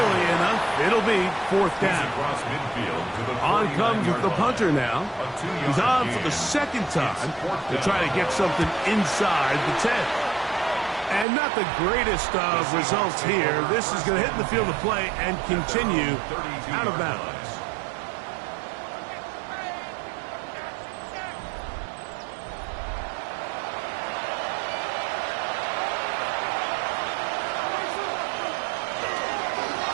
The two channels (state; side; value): drops out; left; at 11.2 s